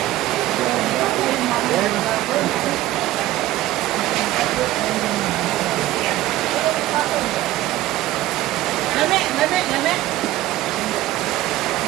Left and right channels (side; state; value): left; quieter; 15.5 dB